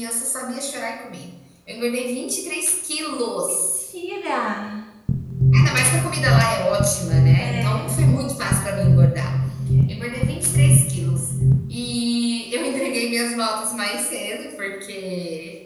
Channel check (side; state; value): both; identical; correlation 1.00